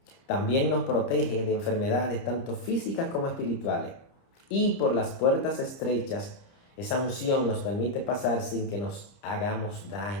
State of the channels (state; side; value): late; right; 30 ms